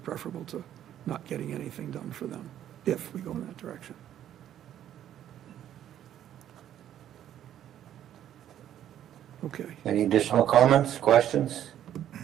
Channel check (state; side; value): quieter; left; 11.0 dB